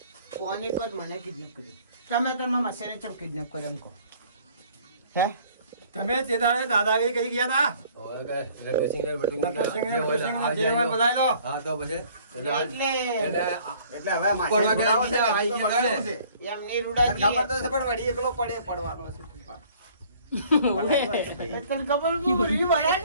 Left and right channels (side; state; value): both; inverted; correlation -0.55